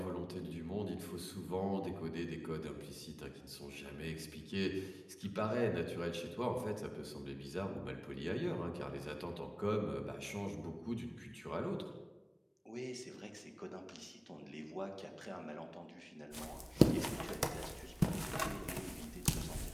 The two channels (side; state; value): both; identical; correlation 1.00